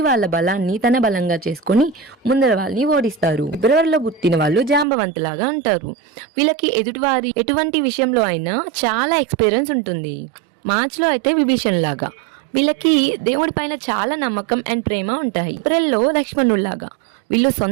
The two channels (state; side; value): drops out; left; at 4.9 s